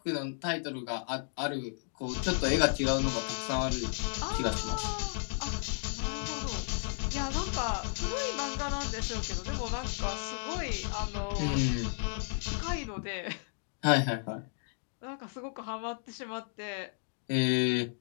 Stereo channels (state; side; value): silent; right; digital silence